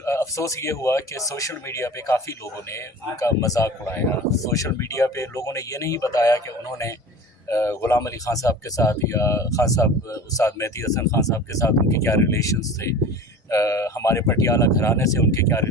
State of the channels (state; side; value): normal; both; correlation 0.37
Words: अफ़सोस ये हुआ कि सोशल मीडिया पे काफ़ी लोगों ने उनका मजाक उड़ाया। सोशल मीडिया पे लोगों ने ये नहीं बताया कि उन्होंने ग़ुलाम अली ख़ान साहब के साथ या ख़ान साहब उस्ताद मेहदी हसन ख़ान साहब के साथ उनके क्या रिलेशंस थे, हमारे पटियाला घराने से उनके क्या